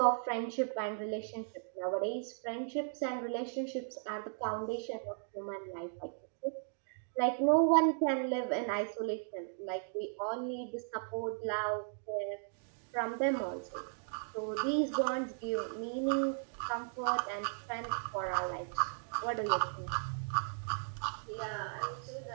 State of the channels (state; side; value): silent; left; digital silence